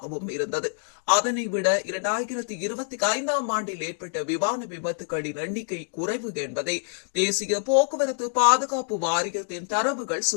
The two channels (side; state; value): right; silent; 57 dB below the other